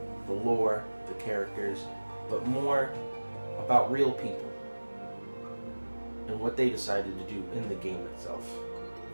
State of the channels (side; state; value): both; inverted; correlation -1.00